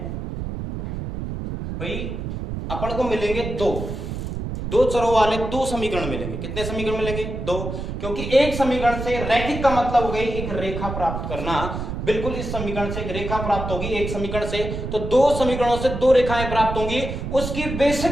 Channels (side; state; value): right; noise; rumble, 5 dB below the sound